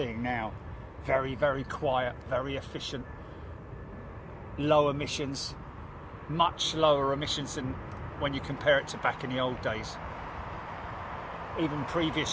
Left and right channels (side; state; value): both; identical; correlation 1.00